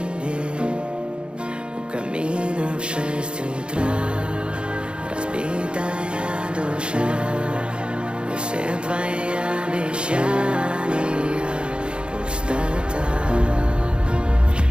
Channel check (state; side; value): late; left; 0.054 ms